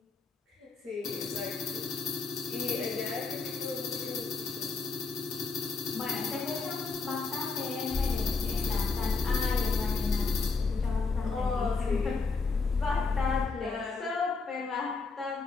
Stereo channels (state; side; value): quieter; right; 4.4 dB